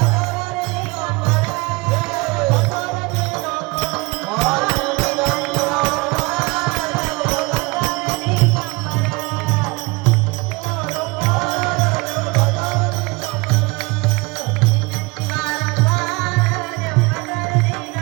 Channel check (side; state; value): left; quieter; 25.5 dB